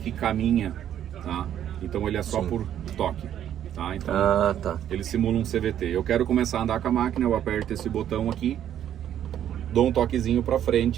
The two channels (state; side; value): quieter; left; 10.5 dB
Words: caminha, tá? Então ele é só por toque, tá? Então ele simula um CVT. Eu quero começar a andar com a máquina, eu aperto esse botão aqui, dou um toquezinho para